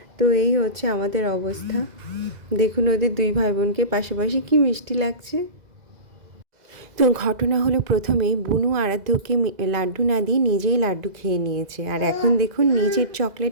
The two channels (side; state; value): left; late; 2.0 ms